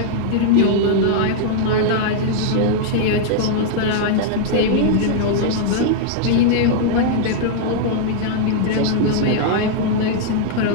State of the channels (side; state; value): both; different; correlation -0.01